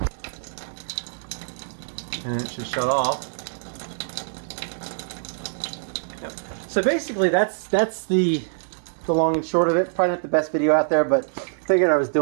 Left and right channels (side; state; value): left; silent; digital silence